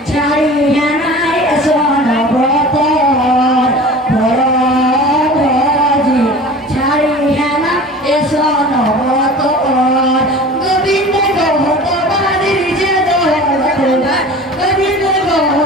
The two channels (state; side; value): normal; both; correlation 0.39